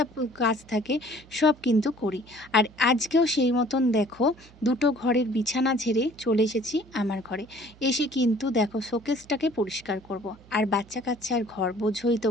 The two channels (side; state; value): right; noise; hum, 24 dB below the sound